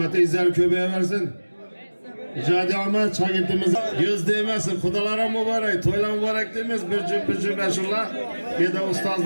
izler köpeğe versin. Icadi Ahmet şagirdimiz göz değmesin. Kudalara mübarek, toyla mübarek demez. Bir cüm beşullah. Bir de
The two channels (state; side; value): inverted; both; correlation -1.00